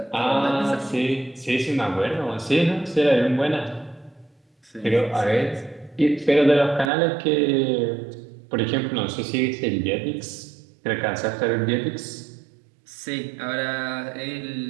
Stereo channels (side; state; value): left; drops out; at 6.9 s